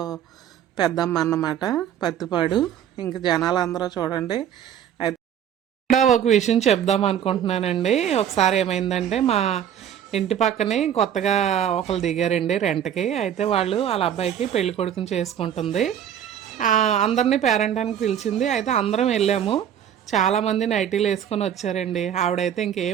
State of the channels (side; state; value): left; quieter; 9.6 dB